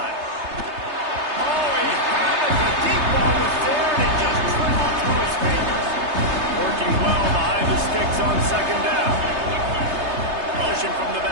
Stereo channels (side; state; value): left; late; 3.3 ms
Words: Oh, he had it. The deep ball was there, and it just trickled through his fingers. Working well behind the sticks on second down. Motion from the